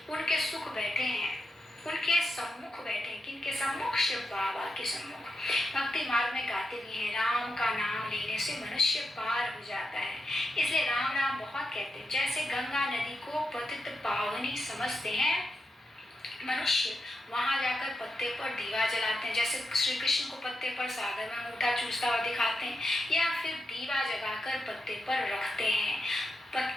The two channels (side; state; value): both; normal; correlation 0.86